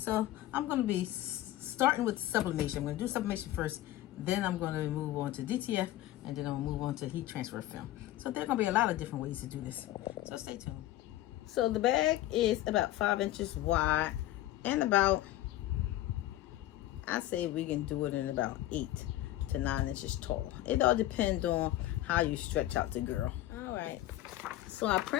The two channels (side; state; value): right; quieter; 14.9 dB